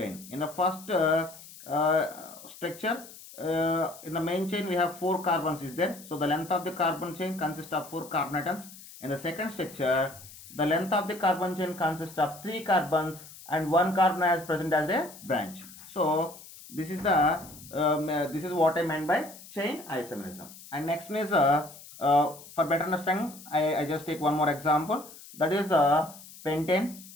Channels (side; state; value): left; noise; hiss, 18 dB below the sound